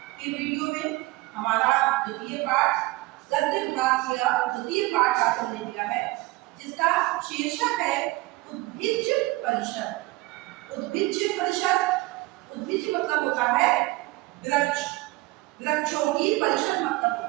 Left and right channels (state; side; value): quieter; left; 21.0 dB